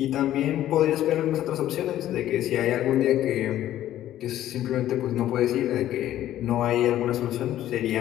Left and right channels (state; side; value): quieter; right; 12.8 dB